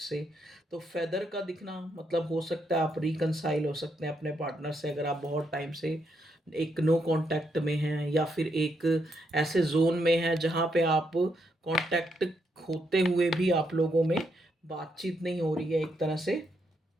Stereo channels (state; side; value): normal; both; correlation 0.78